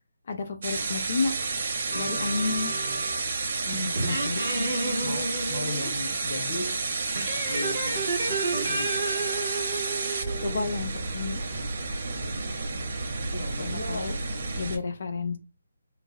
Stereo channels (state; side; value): inverted; both; correlation -0.79